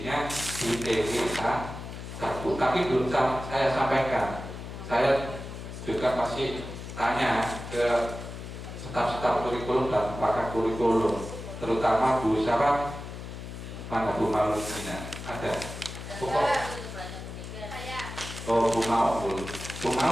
di TW1. Tapi belum saya sampaikan. Saya juga masih tanya ke staf-staf kurikulum dan pakar kurikulum, terutama Bu siapa? Mana Bu Maulina? Ada? Oh, Bu Maul. Bu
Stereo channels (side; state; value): left; noise; hum, 10 dB below the sound